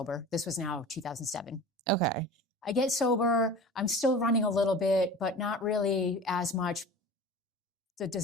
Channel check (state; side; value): normal; both; correlation 0.37